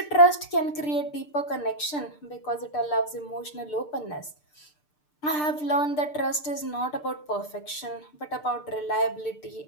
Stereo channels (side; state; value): right; late; 6.7 ms